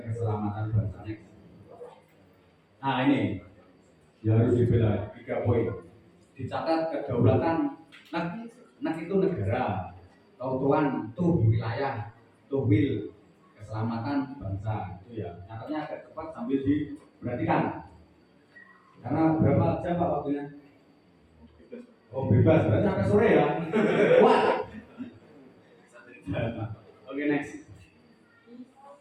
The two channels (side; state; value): both; identical; correlation 1.00